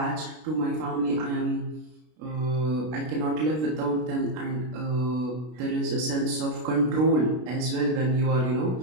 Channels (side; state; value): left; late; 32 ms